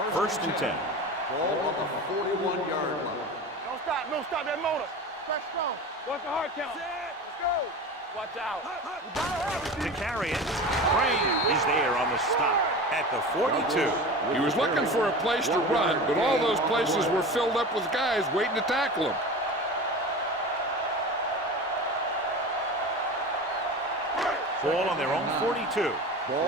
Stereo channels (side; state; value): both; normal; correlation 0.31